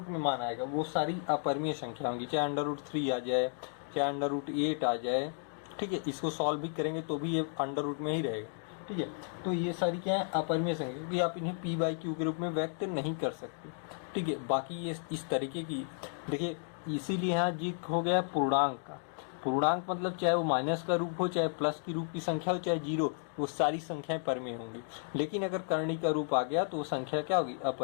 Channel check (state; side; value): silent; right; digital silence